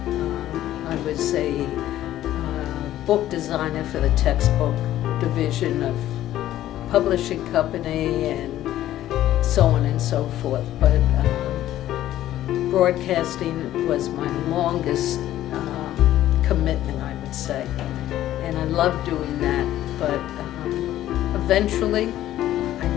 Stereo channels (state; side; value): quieter; right; 13.3 dB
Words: I was a book designer for the textbook division of publishing company and so on and so forth. But broadcasting was my longest commitment, I would say. And I loved doing that, but eventually I